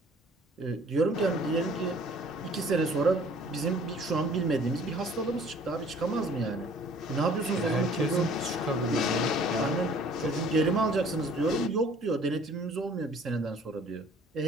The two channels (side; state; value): both; normal; correlation 0.54